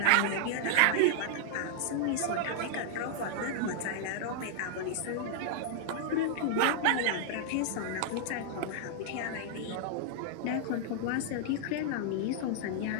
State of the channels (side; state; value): both; different; correlation -0.01